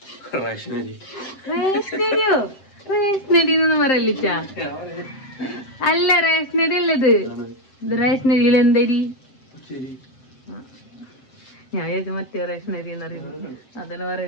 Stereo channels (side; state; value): right; late; 7.6 ms